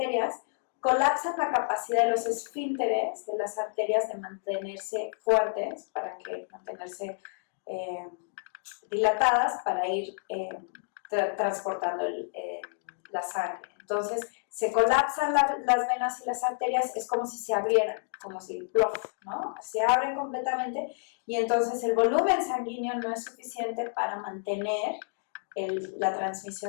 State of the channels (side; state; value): right; silent; digital silence